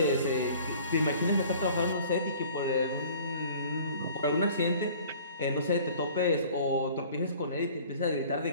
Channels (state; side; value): inverted; both; correlation -0.49